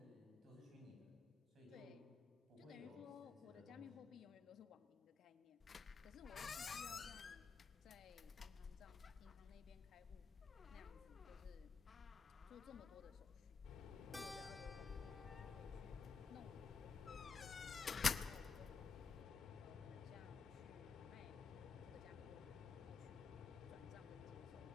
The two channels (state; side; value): quieter; right; 5.4 dB